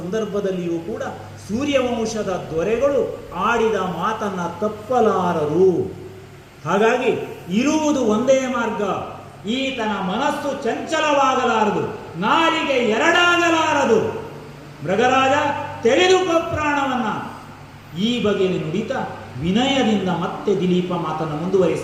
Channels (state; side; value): identical; both; correlation 1.00